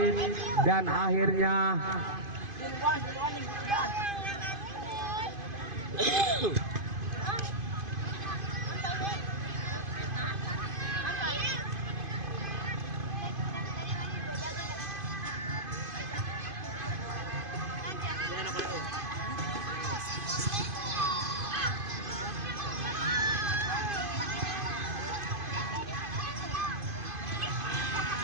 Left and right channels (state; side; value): late; left; 2.5 ms